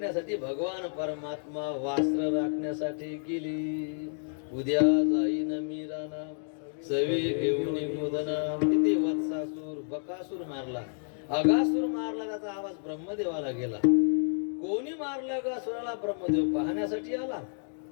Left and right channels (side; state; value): right; silent; digital silence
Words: भगवान परमात्मा वास्त्र राखण्यासाठी गेली. उद्या जाईन मी राणा सवे घेऊन मोदना. किती वत्सासूर बकासूर मारला, अगासूर मारला. त्याचा आवाज ब्रह्मदेवाला गेला. कोणी मारला अगासुराला? ब्रह्मदेव पाहण्यासाठी आला